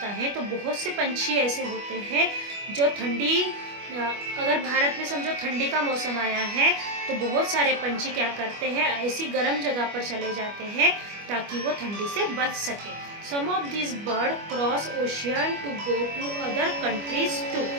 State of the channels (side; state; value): left; late; 25 ms